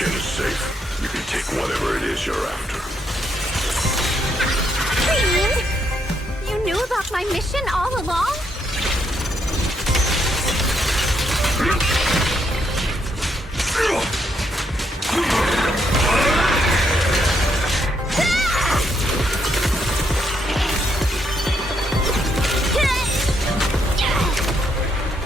is safe, you can take whatever it is you're after. Fiend! You knew about my mission all along?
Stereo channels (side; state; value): both; normal; correlation 0.76